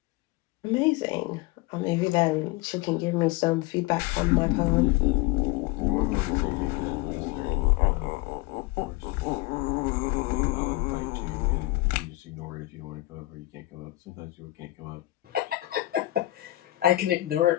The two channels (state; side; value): quieter; right; 18.6 dB